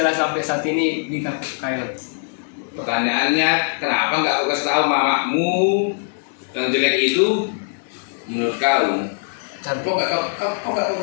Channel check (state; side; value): silent; right; 65 dB below the other